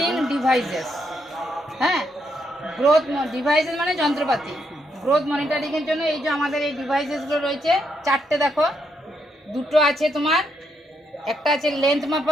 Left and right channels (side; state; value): both; normal; correlation 0.77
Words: ডিভাইসেস। হ্যাঁ, গ্রোথ ডিভাইসেস মানে যন্ত্রপাতি। গ্রোথ মনিটরিংয়ের জন্য এই যে আমাদের এই ডিভাইসেসগুলো রয়েছে চারটে। দেখো, দুটো আছে তোমার, একটা আছে লেন্থ